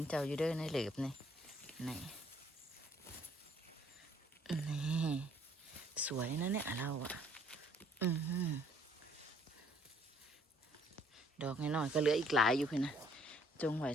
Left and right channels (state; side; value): normal; both; correlation 0.62